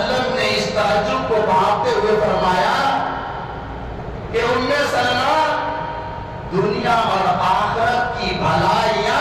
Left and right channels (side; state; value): both; identical; correlation 1.00